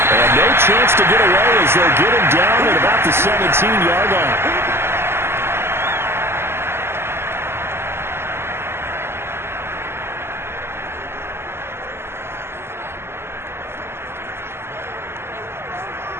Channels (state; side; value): late; left; 0.12 ms